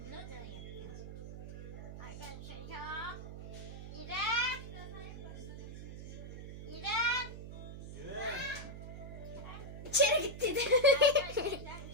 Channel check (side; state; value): right; noise; hum, 9 dB below the sound